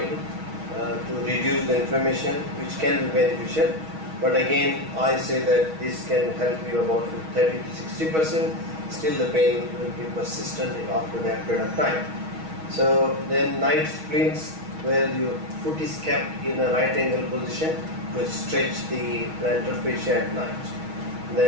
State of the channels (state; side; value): late; left; 6.3 ms